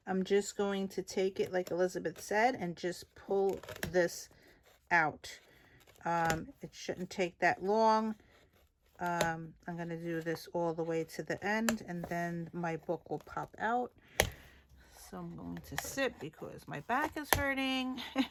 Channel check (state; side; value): identical; both; correlation 1.00